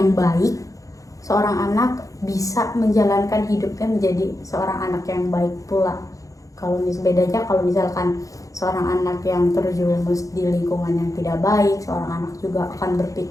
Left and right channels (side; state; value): right; late; 0.16 ms